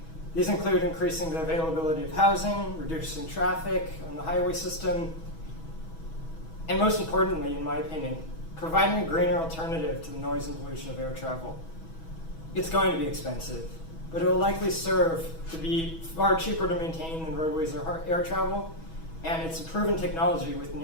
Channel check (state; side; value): late; right; 6.2 ms